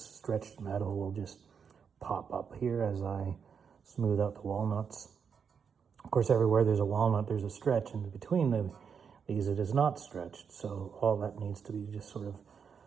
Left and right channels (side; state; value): left; quieter; 6.6 dB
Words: stretched metal will just pop up here as I smooth out the walnuts. Of course, everywhere there's a walnut, there's a stretch, and between these it is not stretched. So all that needs to be just sort of